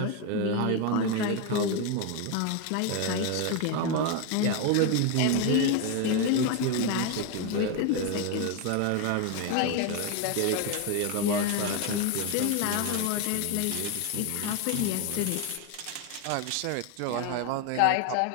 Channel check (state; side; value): different; both; correlation 0.02